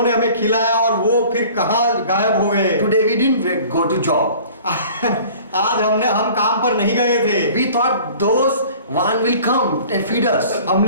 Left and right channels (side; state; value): both; inverted; correlation -0.47